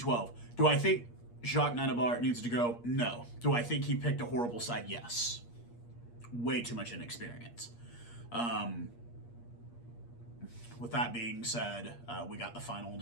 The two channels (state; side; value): late; right; 8.5 ms